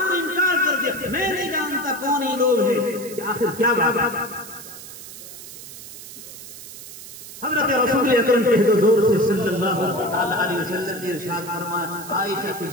نے انکار کر دیا، میں نہیں جانتا کون ہی لوگ ہیں۔ آخر کیا بات؟ حضرت رسول اکرم کے حضور سے صلی اللہ علیہ وسلم نے ارشاد فرمایا عائشہ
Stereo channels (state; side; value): noise; right; hiss, 14 dB below the sound